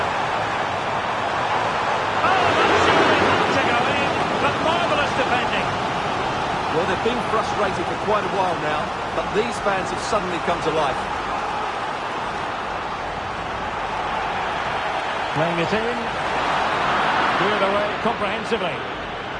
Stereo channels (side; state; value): both; identical; correlation 1.00